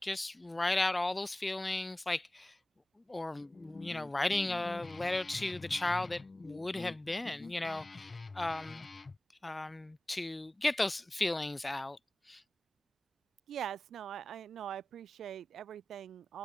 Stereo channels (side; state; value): both; normal; correlation 0.97